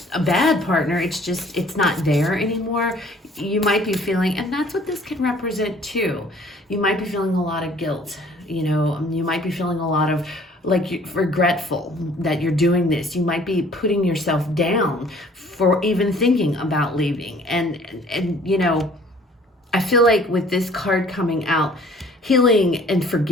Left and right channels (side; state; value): both; normal; correlation 0.55